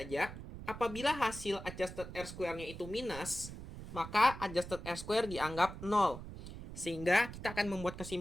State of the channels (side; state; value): right; noise; rumble, 11 dB below the sound